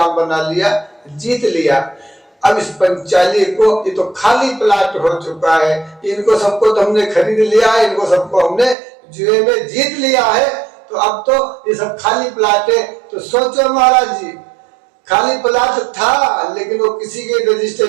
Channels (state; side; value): drops out; left; at 8.8 s